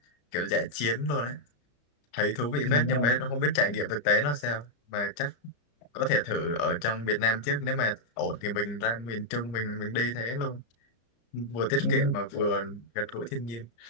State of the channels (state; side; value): late; right; 34 ms